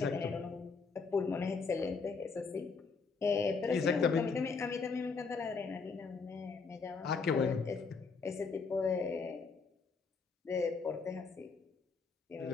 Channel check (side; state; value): right; quieter; 4.8 dB